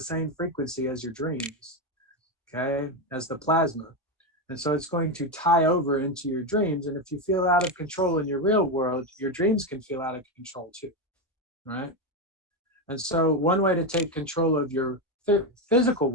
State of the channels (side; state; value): both; normal; correlation 0.10